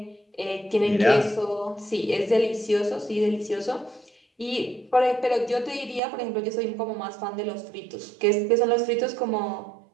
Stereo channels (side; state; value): left; drops out; at 6.0 s